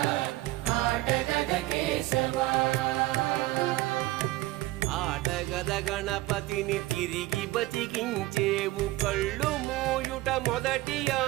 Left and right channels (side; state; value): left; quieter; 18.3 dB